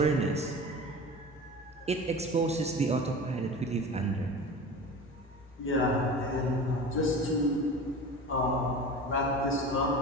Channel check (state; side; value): normal; both; correlation 0.34